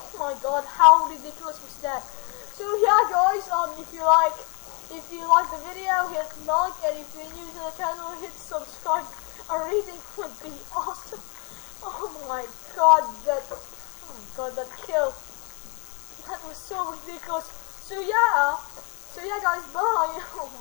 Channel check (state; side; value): quieter; right; 34.0 dB